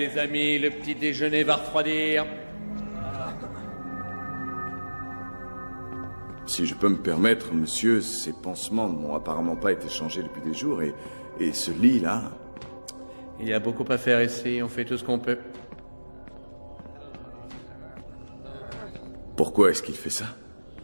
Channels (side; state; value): both; inverted; correlation -1.00